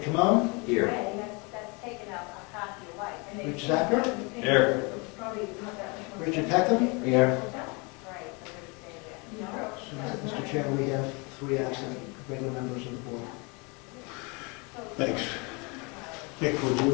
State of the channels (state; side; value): quieter; right; 29.8 dB